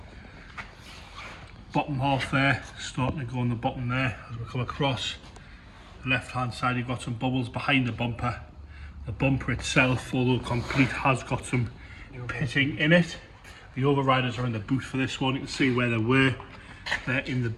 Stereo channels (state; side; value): identical; both; correlation 1.00